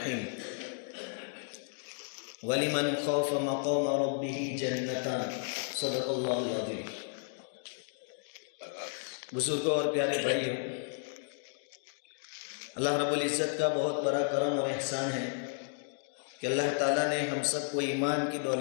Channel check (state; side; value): silent; right; 56 dB below the other